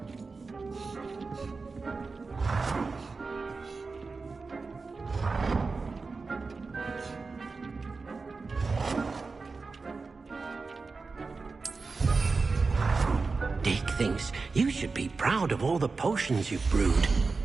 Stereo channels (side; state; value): left; quieter; 4.2 dB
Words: Deek Dick thinks you should be proud of all the potions you've brewed.